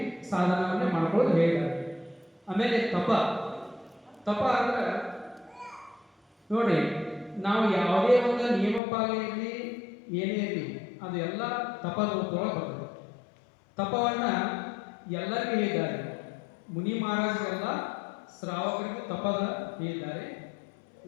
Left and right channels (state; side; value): drops out; right; at 8.8 s